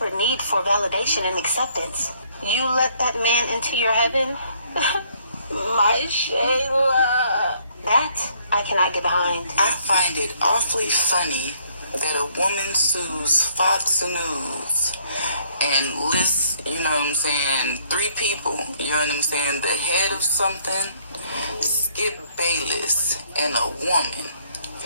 need for validation and acceptance. You let that man into your heaven? My Shayla. That I cannot get behind. I find it awfully funny that a woman sues Fox News and lists, you know what I'm saying, 3 people, you know what I'm saying, the head of something, Skip Bayless, and a woman.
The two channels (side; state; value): both; inverted; correlation -0.65